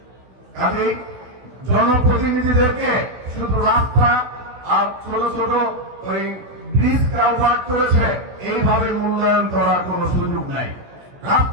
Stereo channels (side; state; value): left; late; 16 ms